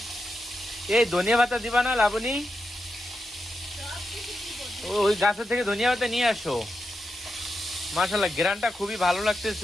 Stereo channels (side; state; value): both; normal; correlation 0.87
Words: এই ধনিয়া পাতা দিবা না লাবণী? ওই গাছের থেকে ধনিয়া পাতা নিয়ে আসো। মাশাল্লাহ, গ্রানটা খুবই ভালো